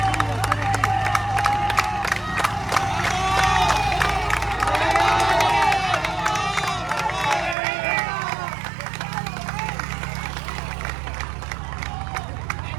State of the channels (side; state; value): left; drops out; at 7.6 s